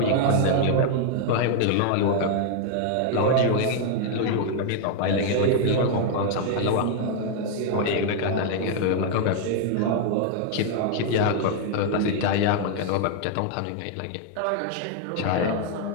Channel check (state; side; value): different; both; correlation 0.00